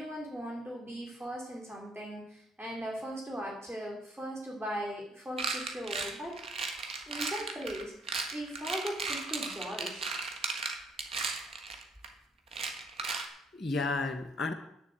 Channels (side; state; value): both; normal; correlation 0.66